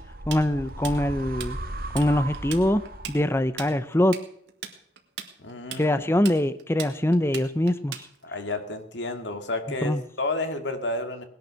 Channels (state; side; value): normal; both; correlation 0.77